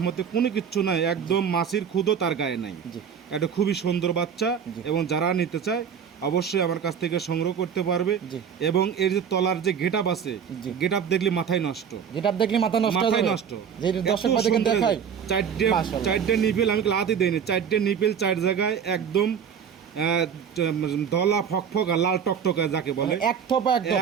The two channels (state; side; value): quieter; left; 7.6 dB